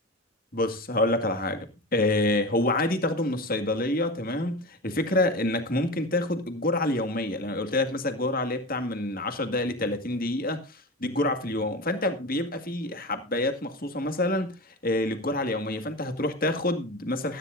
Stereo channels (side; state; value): both; normal; correlation 0.28